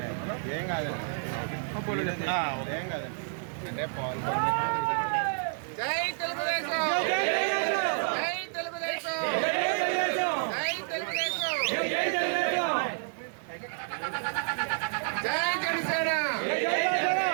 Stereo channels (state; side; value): silent; left; digital silence